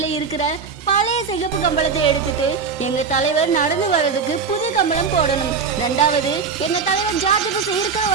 இருக்கிற பழைய சிகப்பு கம்பளத்தை எடுத்துட்டு எங்க தலைவர் நடந்து வர்றதுக்கு புது கம்பளம் போடணும். 2வது, எங்க தலைவர் ஜார்ஜ் புஷ் இருக்கிற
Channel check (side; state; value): left; quieter; 5.5 dB